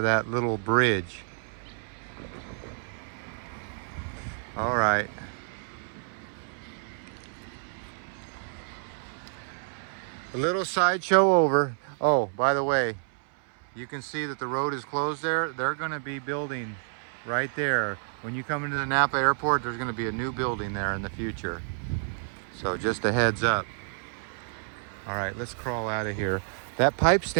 that little bridge. All right. A little sideshow over. Oh, by the way, you can see that the road is closed there. They're going to be building right there. When you come into the Napa airport, there's going to be a new building there in the future. So just a heads up. All right, let's crawl out of here. That pipe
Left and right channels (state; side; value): silent; left; 58 dB below the other